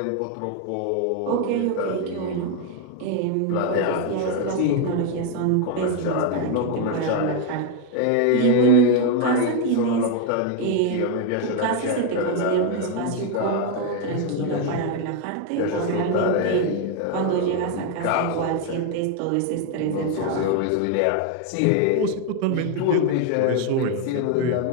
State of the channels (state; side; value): different; both; correlation 0.01